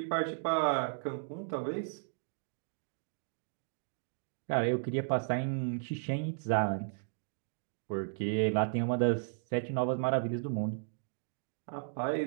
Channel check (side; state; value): left; silent; digital silence